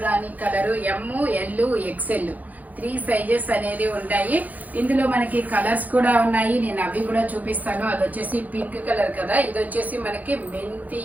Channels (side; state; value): left; late; 0.080 ms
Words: colour M, L, XL 3 sizes అనేది ఉంటాయి. ఇందులో మనకి కలర్స్ కూడా ఉన్నాయి. నేను అవి కూడా చూపిస్తాను. అది వచ్చేసి పింక్ కలర్ కదా, ఇది వచ్చేసి మనకి మెంతి